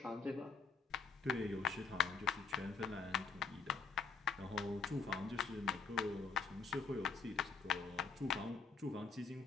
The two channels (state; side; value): quieter; right; 4.8 dB